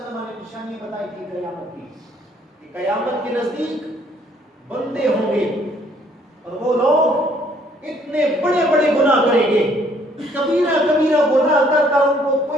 نے نشانی بتائی تھی قیامت کی، کہ قیامت کے نزدیک بندے ہوں گے اور وہ لوگ اتنے بڑے بڑے گناہ کریں گے، کبیرہ کبیرہ گناہ کر کر ان کو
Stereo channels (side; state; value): both; normal; correlation 0.64